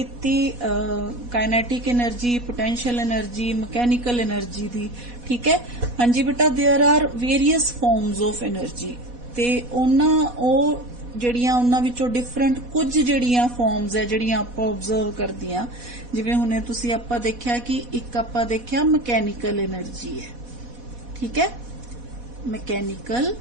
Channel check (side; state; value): left; late; 4.1 ms